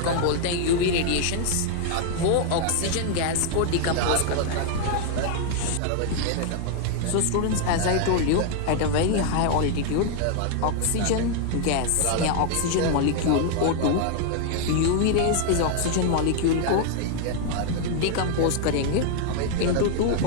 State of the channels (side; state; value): both; different; correlation 0.00